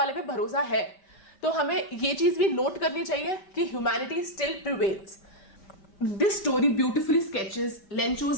पे भरोसा है तो हमें ये चीज भी नोट करनी चाहिए कि humanity still prevails. This story beautifully sketches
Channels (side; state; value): right; late; 5.1 ms